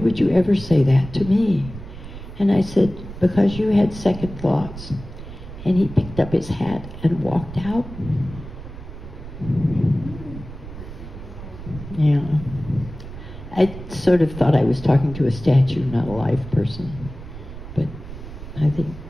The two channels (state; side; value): noise; right; rumble, 13 dB below the sound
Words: you ever say that to me? And I said, because you had second thoughts. And he picked up his hat and walked out. Yeah. I sort of thought I was talking to a statue, not a live person. But I think